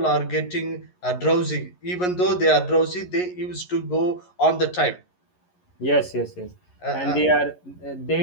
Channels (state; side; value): late; right; 11 ms